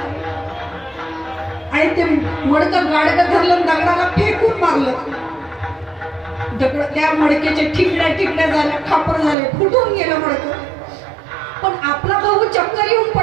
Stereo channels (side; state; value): left; drops out; at 9.3 s